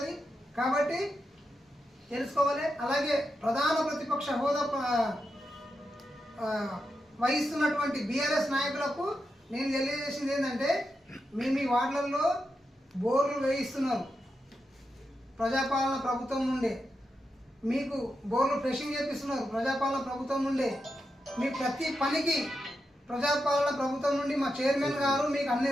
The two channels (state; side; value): normal; both; correlation 0.87